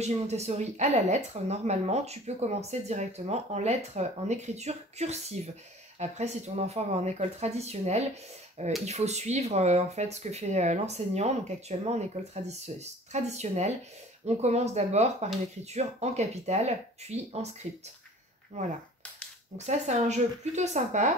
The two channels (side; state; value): both; normal; correlation 0.47